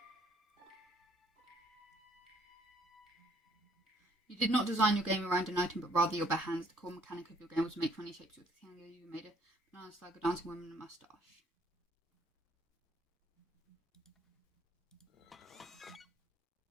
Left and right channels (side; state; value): both; normal; correlation 0.64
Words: should probably craft this. You did not design your game around an item, but rather your bare hands. The core mechanic of your game was to make funny shapes with the thing. You made a banana slug, a dancing woman, and a mustache.